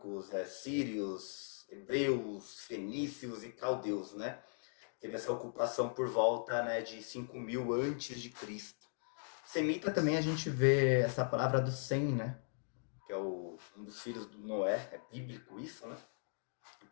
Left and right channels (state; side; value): silent; right; digital silence